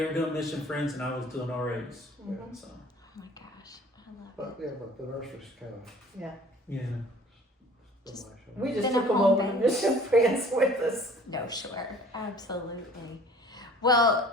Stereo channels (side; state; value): both; normal; correlation 0.49